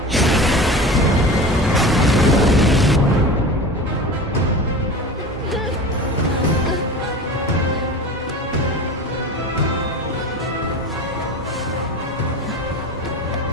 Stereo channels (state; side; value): normal; both; correlation 0.33